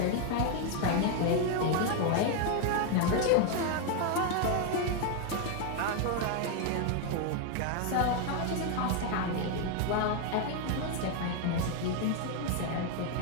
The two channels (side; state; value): both; different; correlation 0.01